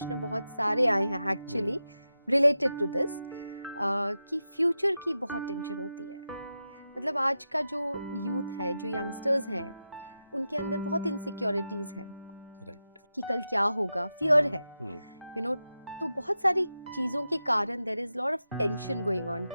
बहुत सारे आए हैं एक्चुअली रिलेटेड टू दिस, कि फ्यूचर की बहुत टेंशन होती है. मतलब आज का जो यूथ है, जो यंगस्टर्स हैं, उनके अंदर बहुत इनसिक्योरिटीज हैं. राइट. कि कल क्या होगा, फियर है, यू नो. तो बहुत सारी चीज़ों के कारण there is lot of tension going on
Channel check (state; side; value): inverted; both; correlation -0.90